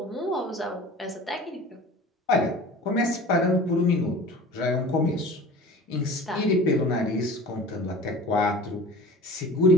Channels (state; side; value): normal; both; correlation 0.40